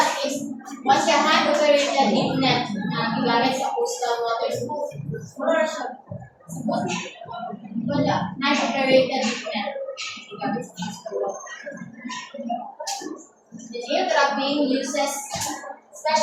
is once your hand operated deep net na gigamit sa coastal waters. Wala, hand operated deep net gigamit sa coastal waters. The geo trapping uses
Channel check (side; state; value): both; identical; correlation 1.00